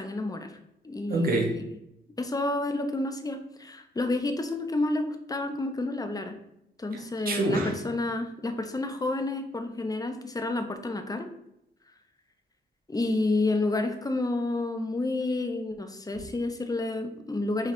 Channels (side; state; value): both; normal; correlation 0.75